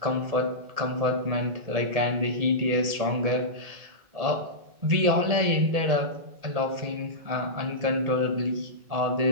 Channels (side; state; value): left; late; 1.8 ms